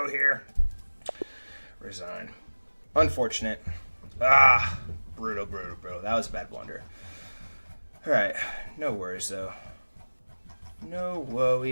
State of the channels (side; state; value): both; inverted; correlation -1.00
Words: here. Resign. Unfortunate. Ah, brutal. That was a bad blunder. Alright, no worries though. No